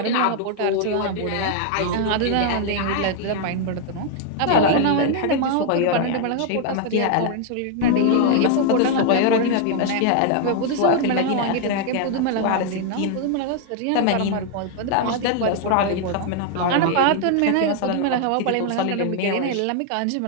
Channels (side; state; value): both; different; correlation 0.00